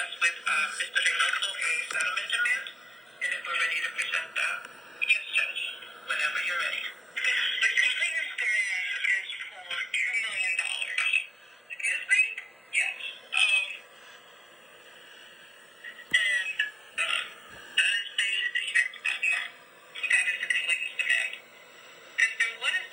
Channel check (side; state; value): both; normal; correlation 0.95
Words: with Mr. Reynoso a settlement demand, and if we're ready to present that. Yes, Judge, whenever you're ready. The complainant's demand is for $2 million. Excuse me? Yes. And that is the check amount. That is the complainant's demand. And so what is